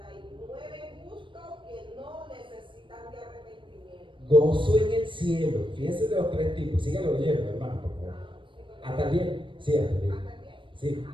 justos que no necesitan de arrepentimiento. Gozo en el cielo. Fíjense de los tres tipos. Síganlo leyendo, hermano, por favor. ¿Hasta el 10? Sí, hasta el 10. ¿Hasta el 10? Sí.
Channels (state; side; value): late; left; 0.24 ms